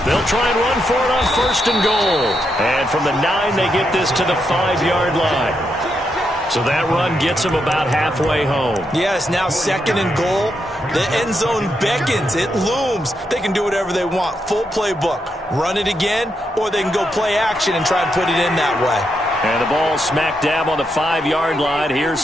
They'll try and run for it on 1st and goal. And from the 9, they get this to the 5-yard line. So that run gets them about halfway home. Yes, now 2nd and goal. The end zone beckons. It looms. They can do whatever they want. Full playbook. Run it again, or they can go play action and try and put it in that way. And the ball smack dab on the 5-yard line. Here's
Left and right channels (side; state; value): both; normal; correlation 0.82